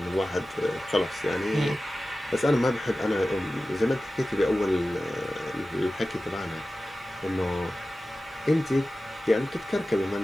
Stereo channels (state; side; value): normal; both; correlation 0.95